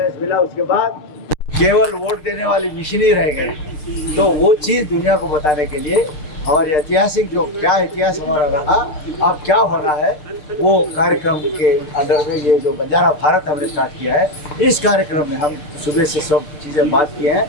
मिला, उसके बाद केवल वोट देने वाली मशीन ही रह गई। तो वो चीज दुनिया को बताने के लिए हमारे ऐतिहासिक जो क्या इतिहास हमारा रहा, अब क्या होना है, वो कार्यक्रम के अंडर में ये जो बंजारा भारत हमने स्टार्ट किया है, इस कार्यक्रम में हम सुबह से सब चीज़ें बात किए हैं।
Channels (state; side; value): late; right; 6.7 ms